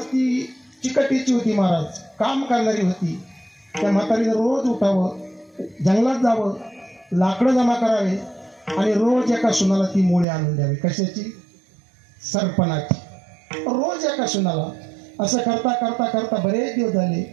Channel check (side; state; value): left; drops out; at 10.2 s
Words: ती चिकटीची होती महाराज, काम करणारी होती. त्या म्हातारीनं रोज उठावं, जंगलात जावं, लाकडं जमा करावे आणि रोज एका सुनाला ती मुळे आणून द्यावी. कशाची? सरपणाची. रोज एका सुनाला. असं करता करता करता बरेच दिवस झाले.